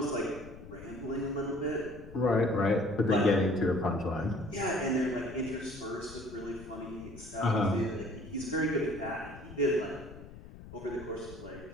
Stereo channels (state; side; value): noise; left; rumble, 16 dB below the sound